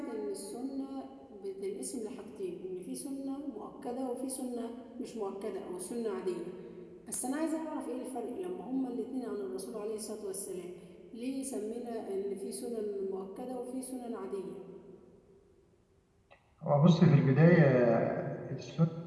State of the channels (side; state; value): both; identical; correlation 1.00